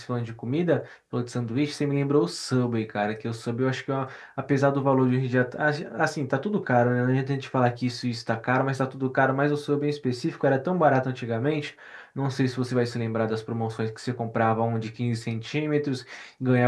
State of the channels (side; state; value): both; identical; correlation 1.00